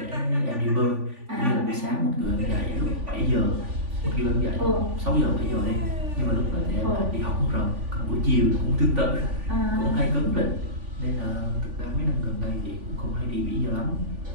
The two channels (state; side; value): late; left; 3.5 ms